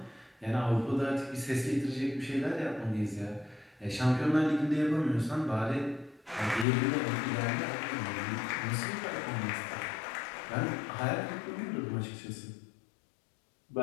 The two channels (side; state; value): right; drops out; at 6.7 s